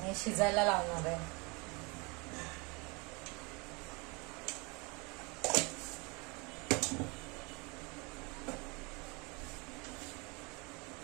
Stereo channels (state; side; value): quieter; left; 28.8 dB